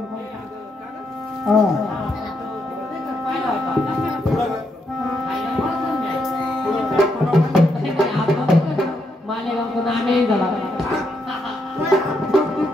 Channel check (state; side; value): normal; both; correlation 0.79